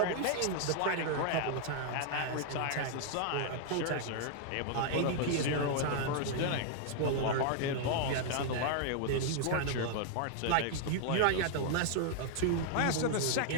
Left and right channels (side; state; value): both; different; correlation 0.00